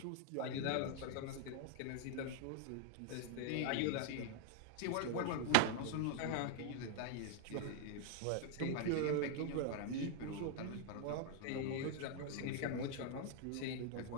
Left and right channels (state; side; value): different; both; correlation 0.00